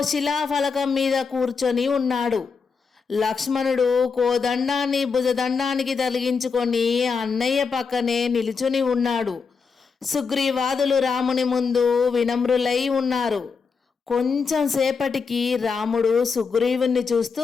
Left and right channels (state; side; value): quieter; right; 5.3 dB